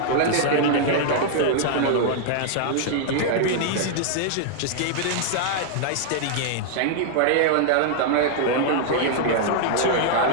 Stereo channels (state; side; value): different; both; correlation 0.00